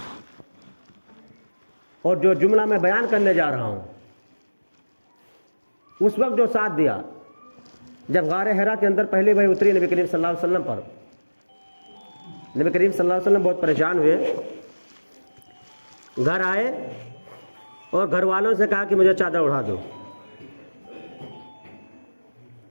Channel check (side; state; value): both; inverted; correlation -1.00